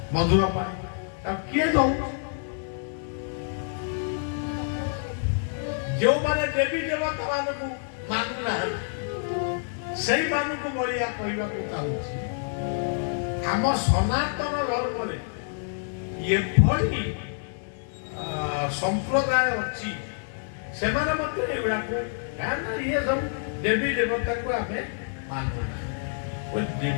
ମଧୁର ପାଣି ତାକୁ କିଏ ଦଉଛି? ଯେଉଁମାନେ ଦେବୀ ଦେବତା ମାନଙ୍କୁ ମାନୁନାହାନ୍ତି ସେଇମାନଙ୍କୁ ବଳିଆ କହିବାକୁ ଚାହୁଁଛି ଆମ ସନାତନ ଧର୍ମରେ ଏଭଳି ସମ୍ପ୍ରଦାୟ ଅଛି ସେମାନେ ମଧ୍ୟ ଏଗୁଡାକୁ କାରଣ ଇଏ ସବୁ ଦେବୀ ଦେବତାକୁ ଆମେ ମାନୁନା।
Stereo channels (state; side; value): silent; right; digital silence